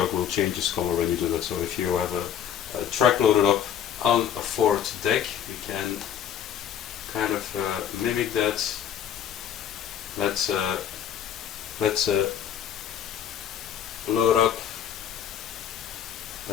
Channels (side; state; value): right; quieter; 9.3 dB